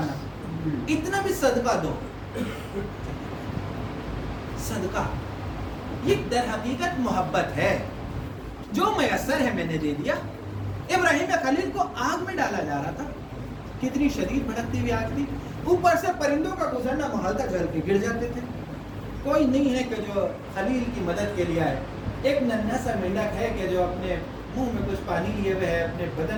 اتنا بھی صدقہ دو۔ صدقہ یہ در حقیقت محبت ہے، جو میسر ہے میں نے دے دیا۔ ابراہیم خلیل کو آگ میں ڈالا جا رہا تھا، کتنی شدید بھڑکتی ہوئی آگ تھی، اوپر سے پرندوں کا گزرنا محال تک جل کے گر جاتے تھے، کوئی نہیں ہے کہ جو خلیل کی مدد کے لیے آئے۔ ایک ننھا سا مینڈک ہے کہ جو اپنے منہ میں کچھ پانی لیے ہوئے ہے، اپنے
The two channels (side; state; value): both; identical; correlation 1.00